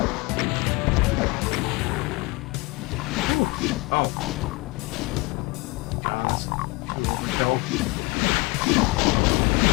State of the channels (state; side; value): quieter; right; 24.6 dB